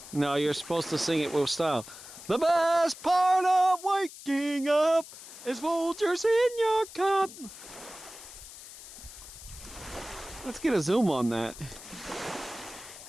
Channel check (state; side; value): noise; left; hiss, 15 dB below the sound